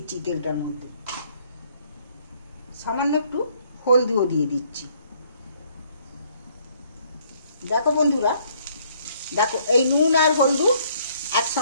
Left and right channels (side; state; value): both; inverted; correlation -0.65